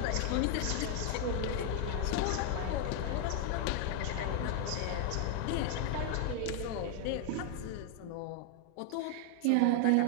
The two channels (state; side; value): different; both; correlation 0.00